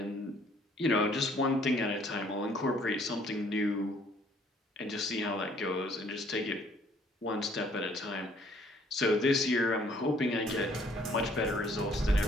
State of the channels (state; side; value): normal; both; correlation 0.61